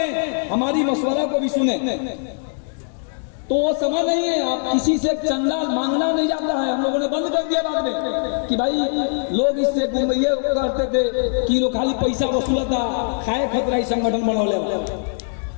हमारी मशवरा को भी सुने। तो वो समय नहीं है आप किसी से चंदा मांगना नहीं जाता है, हम लोगों ने बंद कर दिया बाद में कि भाई लोग इससे ये करते थे कि लोग खाली पैसा वसूलता, खाए खतरा ही संगठन बनौले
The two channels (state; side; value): silent; right; 65 dB below the other